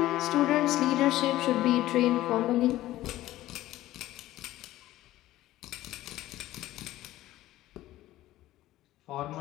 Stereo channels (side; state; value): right; quieter; 15.4 dB